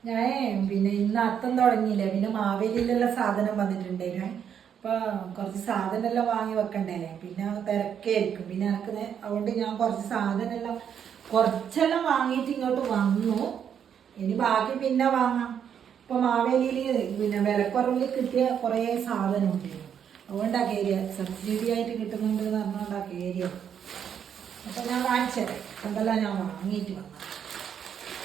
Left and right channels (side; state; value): left; quieter; 8.3 dB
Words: ഞാൻ പിന്നെ ഇന്ന് അത്തം തുടങ്ങിയില്ലേ, പിന്നെ മാവേലിയിലുള്ള സാധനം വന്നിട്ടുണ്ടായിരുന്നു. അപ്പൊ കുറച്ച് സാധനമെല്ലാം വാങ്ങി വെക്കണ്ടേ, പിന്നെ തിരക്കായിരിക്കും. പിന്നെ എനിക്ക് അതുകൊണ്ട് ഞാൻ കുറച്ചെല്ലാം വാങ്ങിയിട്ട് ഇങ്ങോട്ട് വന്നു. ഇനി ബാക്കി പിന്നെ വാങ്ങാം. ഇപ്പൊ മാവേലിയിൽ പിന്നെ വിലക്കുറവിൽ കിട്ടിയ കുറേ സാധനം ഉണ്ടായിരുന്നു. അതുകൊണ്ടാ കയറിയ, സബ്സിഡി ആയിട്ട് കിട്ടുന്നുണ്ട് എന്ന് പറഞ്ഞുകൊണ്ടാ കയറിയ. അപ്പൊ ഞാൻ കാണിച്ചത് എന്തെല്ലാം ഞാൻ വാങ്ങിയിട്ട് വന്നു.